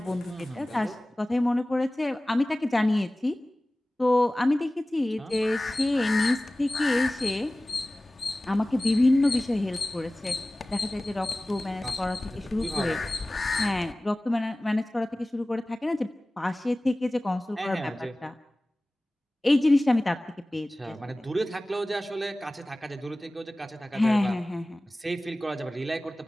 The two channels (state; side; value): normal; both; correlation 0.98